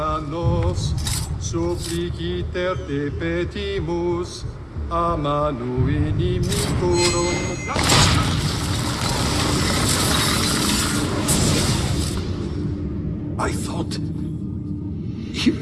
Dios, suppliciter te petimus, a manu inimicorum. I thought he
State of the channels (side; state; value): both; identical; correlation 1.00